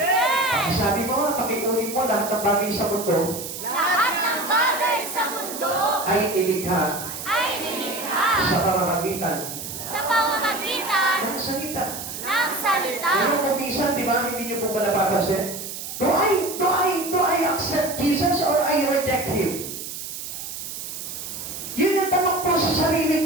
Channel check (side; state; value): right; noise; hiss, 8 dB below the sound